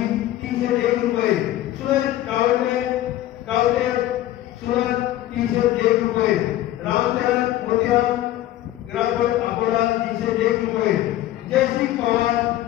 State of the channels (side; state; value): right; quieter; 14.3 dB